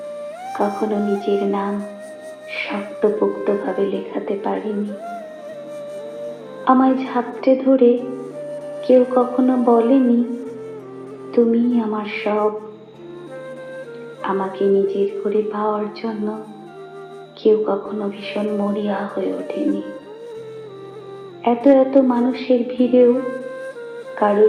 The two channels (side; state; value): both; identical; correlation 1.00